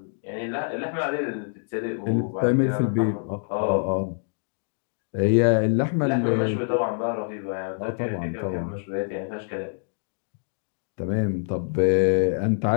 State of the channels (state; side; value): silent; right; 61 dB below the other